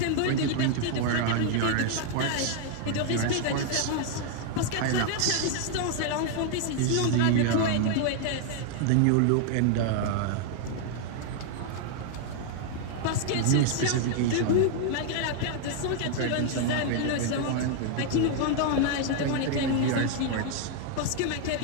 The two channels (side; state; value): both; different; correlation 0.00